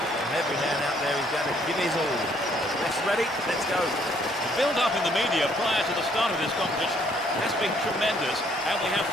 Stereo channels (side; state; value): both; normal; correlation 0.65